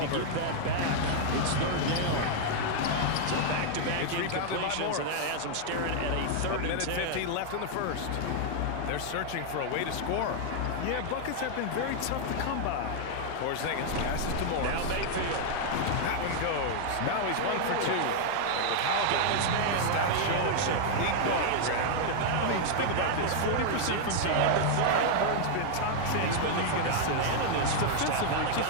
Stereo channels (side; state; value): both; different; correlation 0.00